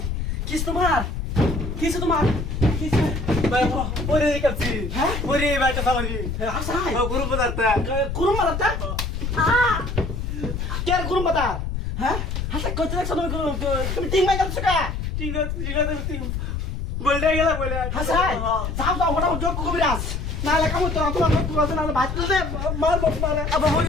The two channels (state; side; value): noise; left; rumble, 3 dB below the sound